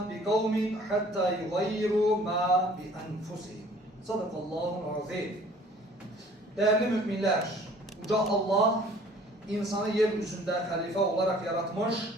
بقوم حتى يغيروا ما بأنفسهم. Sadakallahul azim. Değerli müminler, Uca Allah insanı yeryüzünde halife olarak yaratmış,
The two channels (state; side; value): normal; both; correlation 0.53